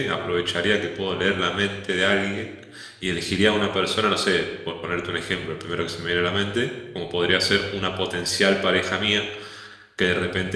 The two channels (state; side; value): identical; both; correlation 1.00